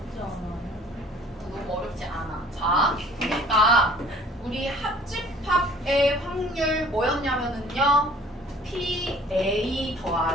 않아요? 너무 어렵지 않아. 자, 그러니까 우리 합집합의 확률 뭐였냐면은요. PA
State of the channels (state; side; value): normal; both; correlation 0.52